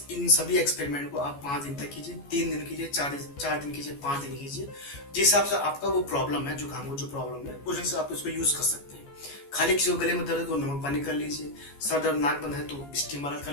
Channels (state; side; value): late; right; 14 ms